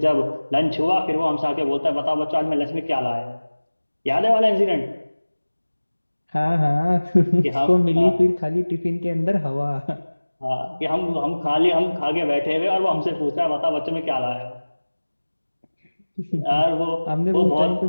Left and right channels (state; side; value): inverted; both; correlation -1.00